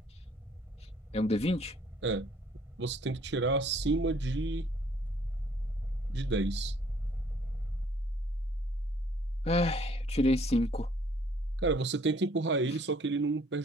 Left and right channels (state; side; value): normal; both; correlation 0.60